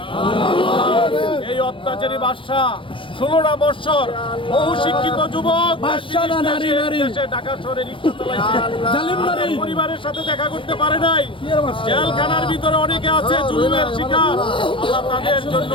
এই অত্যাচারী বাদশা 16টা বছর বহু শিক্ষিত যুবক দেশে ঢাকা শহরে রিক্সা চালাইছে, পরিবারের সাথে দেখা করতে পারে নাই, জেলখানার ভিতরে অনেকে আছে জুলুমের শিকার। আল্লাহ তাদের জন্য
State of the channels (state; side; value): late; right; 0.25 ms